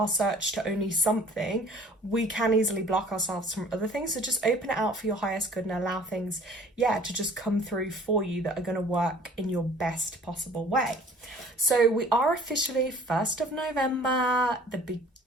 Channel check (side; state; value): both; normal; correlation 0.50